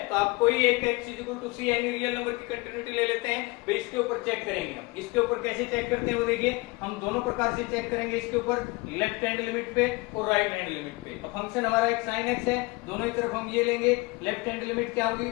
तो आप कोई एक एक्स इज इक्वल टू सी यानी रियल नंबर की कंटिन्यूटी ले लेते हैं, फिर इसके ऊपर चेक करेंगे। हम इसके ऊपर कैसे चेक करते हैं वो देखिए, हम दोनों प्रकार से चेक करेंगे इसके ऊपर, लेफ्ट हैंड लिमिट पे और राइट हैंड लिमिट पे। अब फंक्शन हमारा एक साइन एक्स है, दोनों ही तरफ हम ये लेंगे, लेफ्ट हैंड लिमिट क्या होगी,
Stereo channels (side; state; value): right; quieter; 24.5 dB